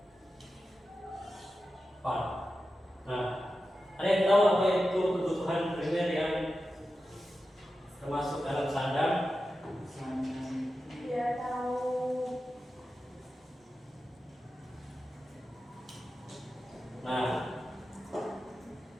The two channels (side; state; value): both; normal; correlation 0.92